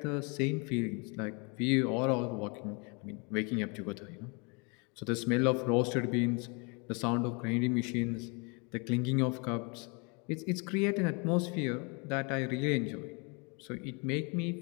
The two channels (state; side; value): quieter; right; 32.4 dB